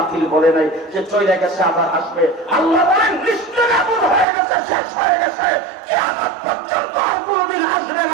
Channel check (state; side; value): drops out; left; at 4.2 s